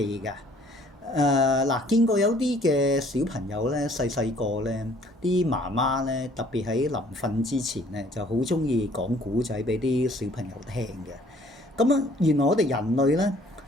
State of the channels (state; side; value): normal; both; correlation 0.58